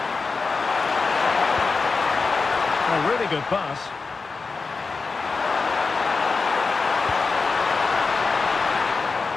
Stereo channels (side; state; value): right; quieter; 4.4 dB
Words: A really good pass.